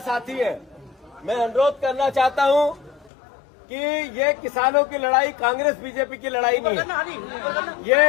हैं, मैं अनुरोध करना चाहता हूं कि ये किसानों की लड़ाई कांग्रेस बीजेपी की लड़ाई नहीं है।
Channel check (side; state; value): right; drops out; at 3.1 s